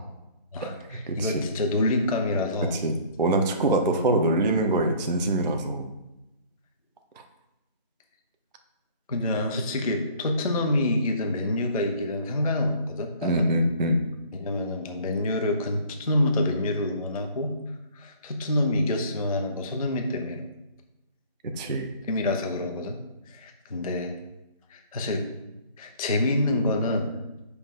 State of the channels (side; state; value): both; inverted; correlation -0.52